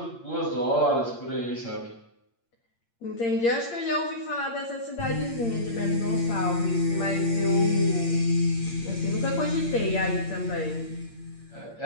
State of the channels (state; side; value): late; right; 8.7 ms